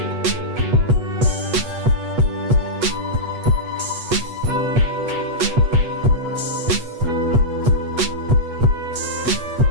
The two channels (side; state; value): left; late; 8.3 ms